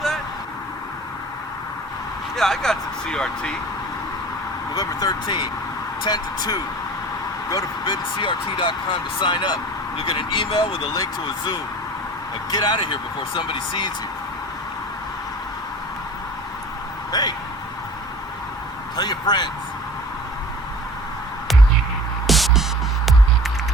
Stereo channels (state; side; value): normal; both; correlation 0.42